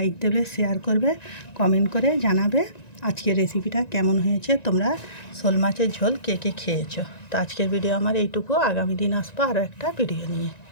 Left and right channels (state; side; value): late; right; 1.9 ms